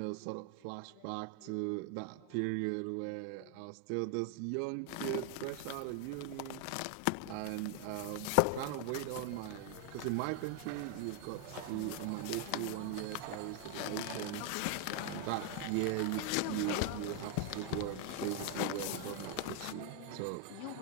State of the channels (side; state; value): both; different; correlation 0.01